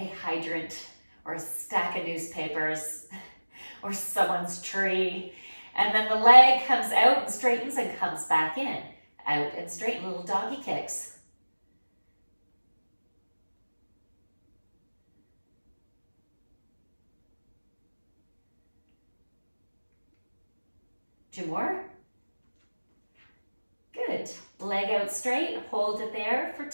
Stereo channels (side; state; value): both; inverted; correlation -1.00